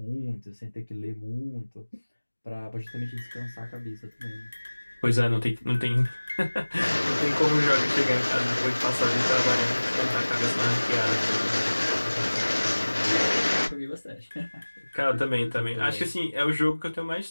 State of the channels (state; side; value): inverted; both; correlation -1.00